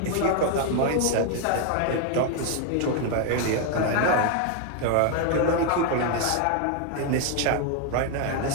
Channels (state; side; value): different; both; correlation 0.01